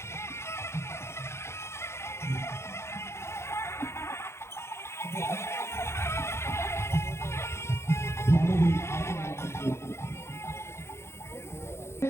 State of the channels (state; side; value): late; right; 0.13 ms